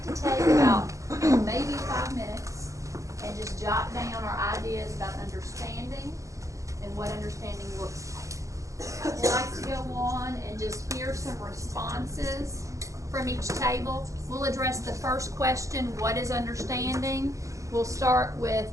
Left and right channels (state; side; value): late; left; 0.15 ms